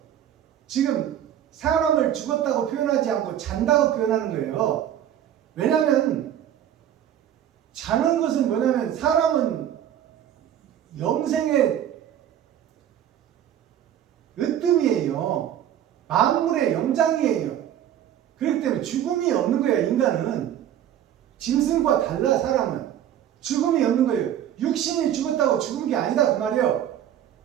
지금 사람을 죽었다고 표현하지 않고 잔다고 표현하는 거예요. 왜냐하면 자는 것은 뭐냐면 사람은 영생의 으뜸이에요. 만물의 영장이에요. 그렇기 때문에 죽음이 없는 거예요. 인간은 짐승과 달라. 사람은 죽음이 없는 거예요. 육신이 죽었다고 죽은 게 아니다 그 말이에요.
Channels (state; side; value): quieter; left; 10.7 dB